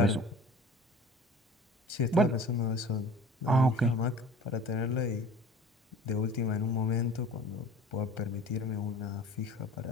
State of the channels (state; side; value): normal; both; correlation 0.43